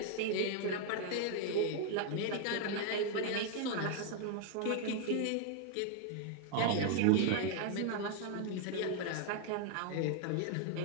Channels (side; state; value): both; different; correlation 0.00